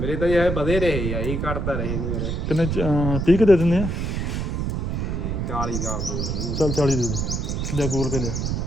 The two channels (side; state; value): right; noise; rumble, 1 dB below the sound